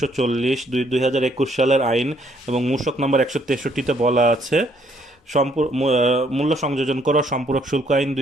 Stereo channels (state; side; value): normal; both; correlation 0.67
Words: 2021 সালের আইন এবং মূসক নাম্বার 163-তে বলা আছে মূল্য সংযোজন করা সম্পূরক শুল্ক আইন